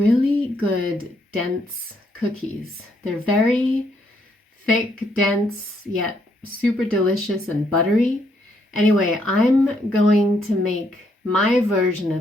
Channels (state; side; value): normal; both; correlation 0.73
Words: good dense cookies. They're very thick, dense, yet super delicious and buttery. Anyway, I'm going to make my version